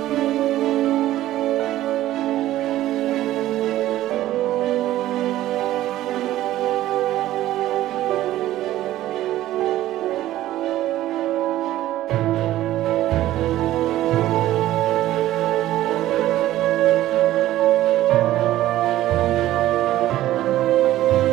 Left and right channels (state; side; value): quieter; left; 14.4 dB